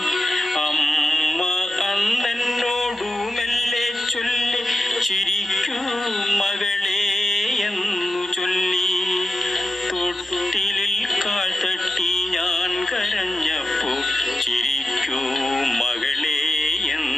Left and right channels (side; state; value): both; normal; correlation 0.92